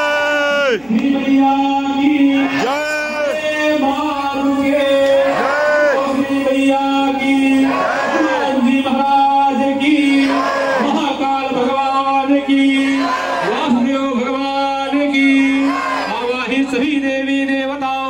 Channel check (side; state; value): right; noise; hum, 28 dB below the sound